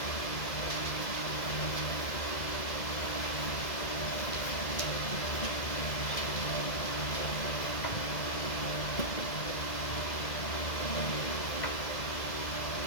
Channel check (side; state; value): right; late; 2.0 ms